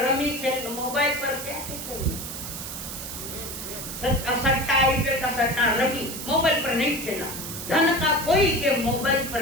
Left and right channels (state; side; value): noise; right; hiss, 8 dB below the sound